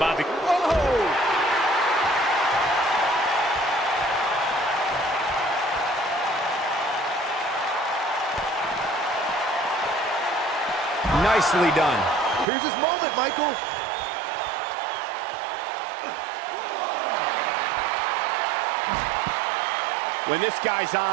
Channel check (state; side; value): drops out; left; at 12.5 s